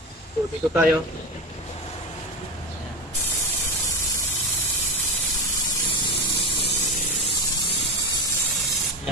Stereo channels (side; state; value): both; normal; correlation 0.21